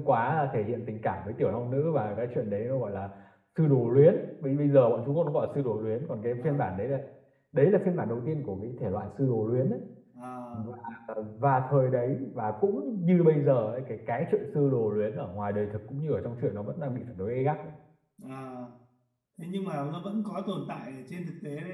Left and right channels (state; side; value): identical; both; correlation 1.00